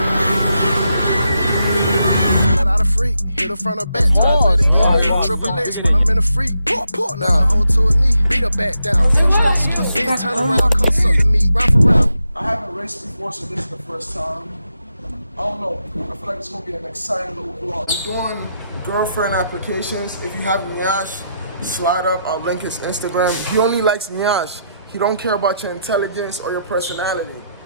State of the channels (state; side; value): inverted; both; correlation -0.81